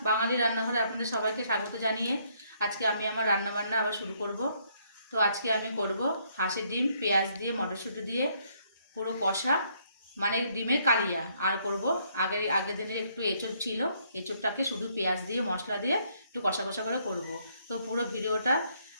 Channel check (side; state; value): both; inverted; correlation -0.69